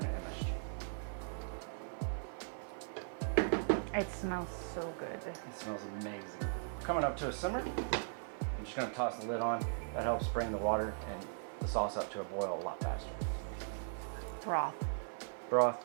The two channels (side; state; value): left; silent; 52 dB below the other